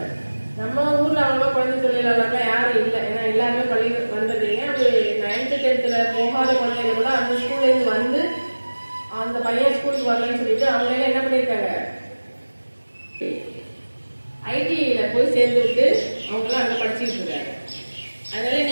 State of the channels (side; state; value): both; inverted; correlation -1.00